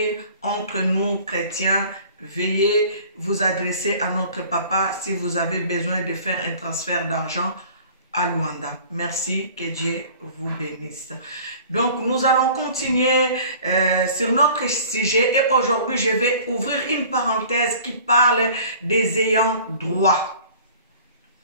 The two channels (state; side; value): inverted; both; correlation -0.47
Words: entre nous chrétiens. Veuillez vous adresser à notre papa si vous avez besoin de faire un transfert d'argent à Luanda. Merci, que Dieu vous bénisse. Donc nous allons continuer sur notre sujet et aujourd'hui je vais ouvrir une parenthèse qui parle des ayants droit.